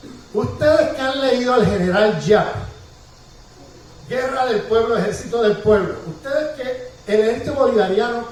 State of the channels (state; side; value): identical; both; correlation 1.00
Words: Ustedes que han leído al general Giap, Guerra del Pueblo, Ejército del Pueblo, ustedes que el ejército